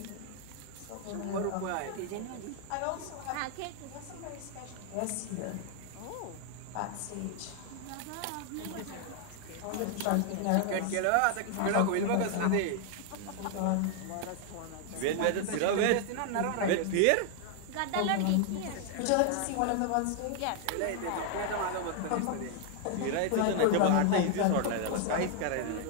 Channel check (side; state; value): both; different; correlation 0.00